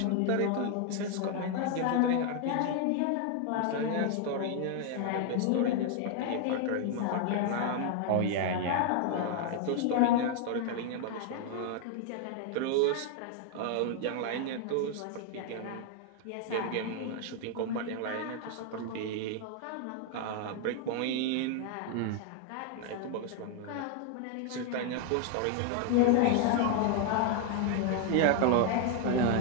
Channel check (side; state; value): both; different; correlation 0.00